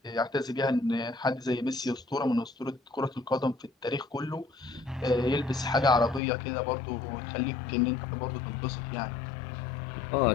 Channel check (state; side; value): drops out; right; at 6.2 s